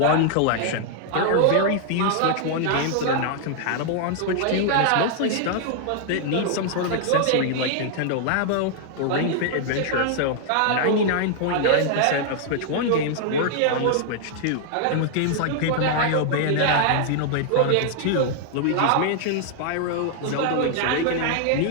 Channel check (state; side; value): different; both; correlation 0.00